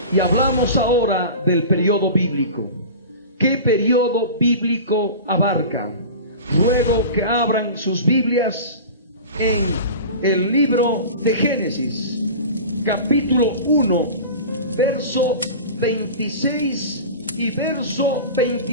Y hablamos ahora del periodo bíblico. ¿Qué periodo bíblico abarca? Ruego que abran sus Biblias en el libro de Génesis, capítulo 1, verso 26 y verso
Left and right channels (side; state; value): both; inverted; correlation -0.33